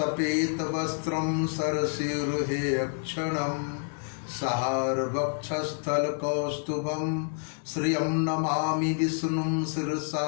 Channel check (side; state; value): right; silent; 59 dB below the other